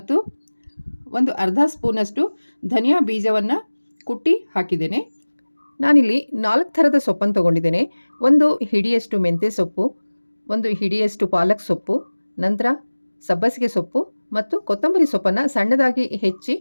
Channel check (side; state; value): both; inverted; correlation -1.00